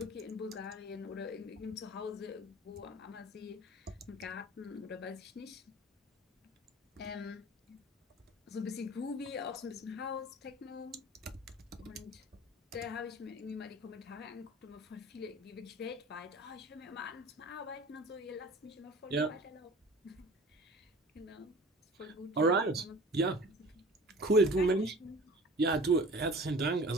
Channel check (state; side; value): normal; both; correlation 0.42